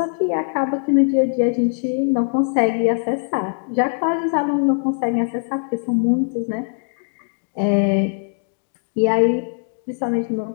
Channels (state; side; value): silent; right; digital silence